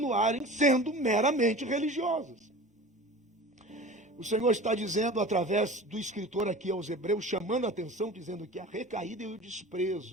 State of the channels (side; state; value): both; normal; correlation 0.38